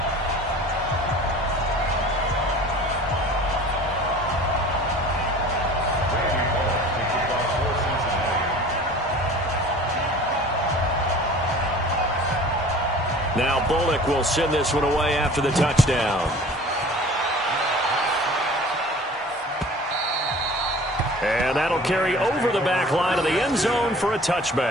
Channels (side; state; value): both; normal; correlation 0.44